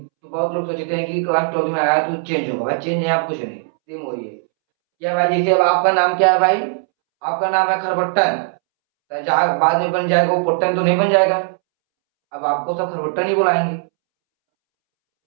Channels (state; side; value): silent; left; 67 dB below the other